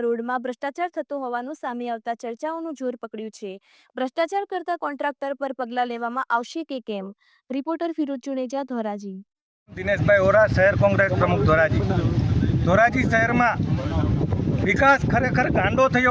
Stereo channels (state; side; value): identical; both; correlation 1.00